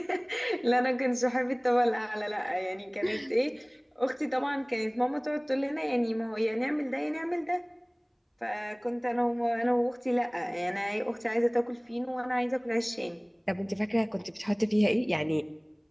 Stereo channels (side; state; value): both; identical; correlation 1.00